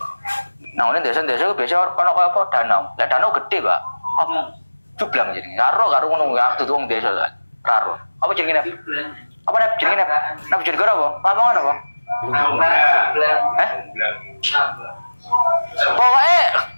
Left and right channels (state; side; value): inverted; both; correlation -1.00